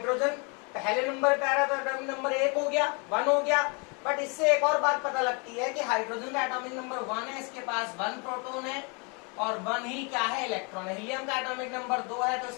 पहले नंबर पे आ रहा है तो एटॉमिक नंबर 1 हो गया, 1 हो गया। बट इससे एक और बात पता लगती है कि हाइड्रोजन का एटॉमिक नंबर 1 है, इसके पास 1 प्रोटॉन है और 1 ही क्या है? इलेक्ट्रॉन है। हीलियम का एटॉमिक नंबर 2 है तो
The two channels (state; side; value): quieter; right; 33.1 dB